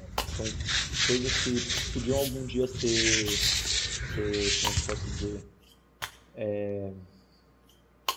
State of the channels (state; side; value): identical; both; correlation 1.00